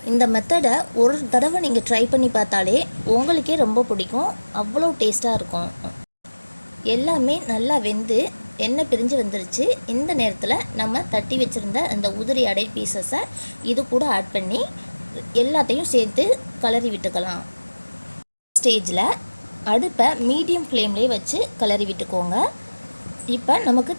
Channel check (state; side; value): inverted; both; correlation -1.00